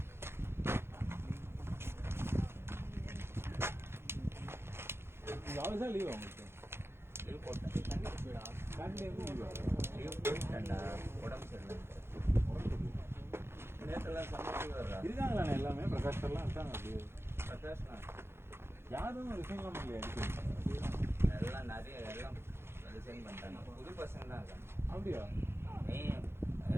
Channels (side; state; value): left; late; 0.12 ms